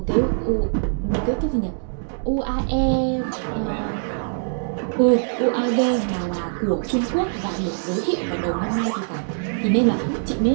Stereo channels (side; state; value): left; silent; 64 dB below the other